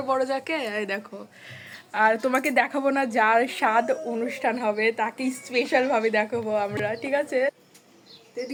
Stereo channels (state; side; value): identical; both; correlation 1.00